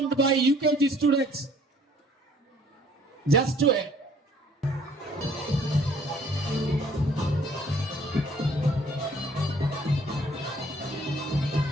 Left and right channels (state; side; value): normal; both; correlation 0.58